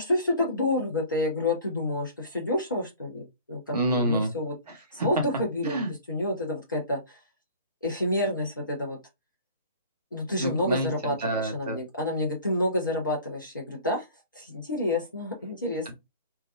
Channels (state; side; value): inverted; both; correlation -0.44